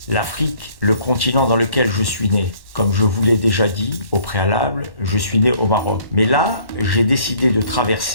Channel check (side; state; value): right; late; 1.1 ms